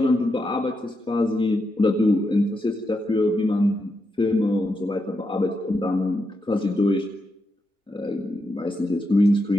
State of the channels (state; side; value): normal; both; correlation 0.84